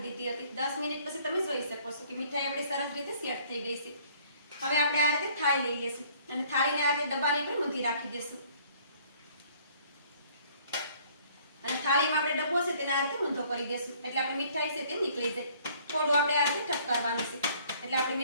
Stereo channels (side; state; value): both; inverted; correlation -0.58